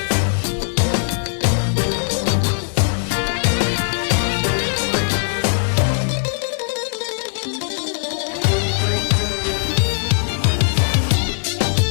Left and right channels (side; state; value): right; silent; 66 dB below the other